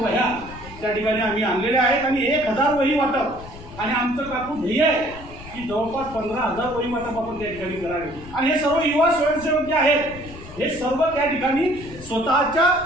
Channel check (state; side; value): noise; left; rumble, 16 dB below the sound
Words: त्या ठिकाणी आम्ही आणलेल्या आहेत आणि 1000 वही वाटप आणि आमचं काकू ध्येय आहे की जवळपास 15,000 वहिवाटप आपण त्या ठिकाणी करावे. आणि हे सर्व युवा स्वयंसेवक जे आहेत हे सर्व त्या ठिकाणी स्वतःच्या